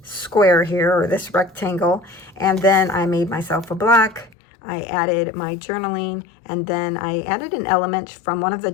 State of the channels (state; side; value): drops out; right; at 4.4 s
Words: square here, or this rectangle, and then I made myself a block. I added my journaling, and then I added an element from one of the